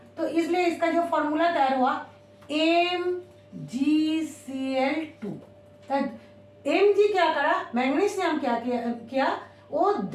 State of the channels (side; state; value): both; identical; correlation 1.00